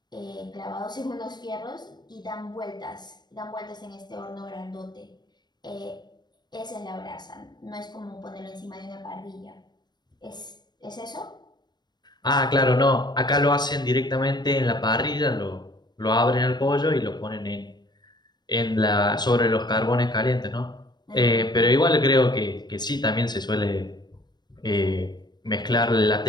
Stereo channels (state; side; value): late; right; 0.21 ms